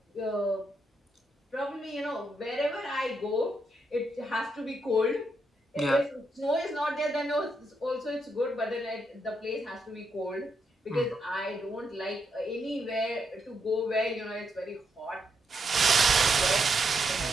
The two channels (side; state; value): both; normal; correlation 0.80